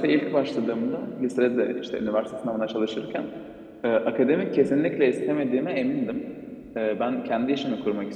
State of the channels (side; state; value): both; identical; correlation 1.00